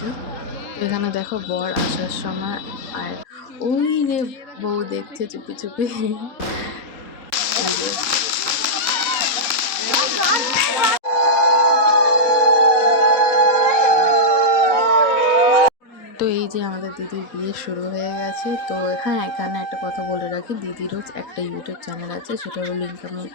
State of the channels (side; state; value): right; late; 3.8 ms